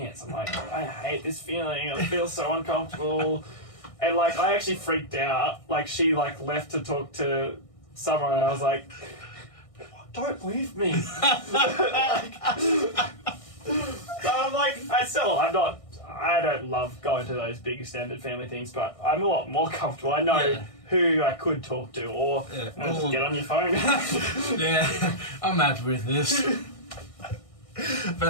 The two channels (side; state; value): right; late; 1.6 ms